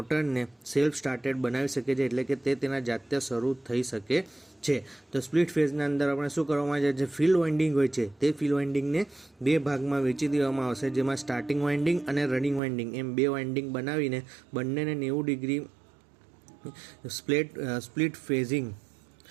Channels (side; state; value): left; drops out; at 12.6 s